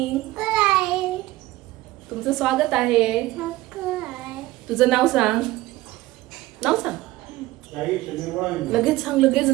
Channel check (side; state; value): left; quieter; 17.7 dB